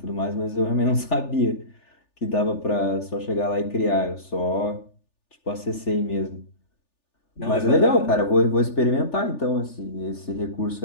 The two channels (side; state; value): right; late; 3.4 ms